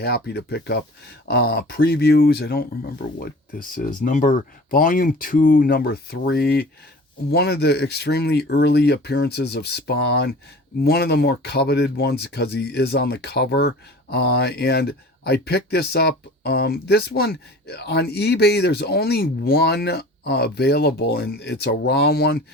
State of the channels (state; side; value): normal; both; correlation 0.42